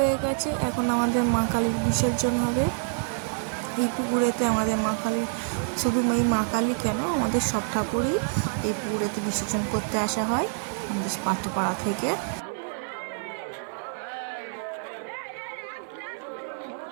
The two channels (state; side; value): silent; left; 55 dB below the other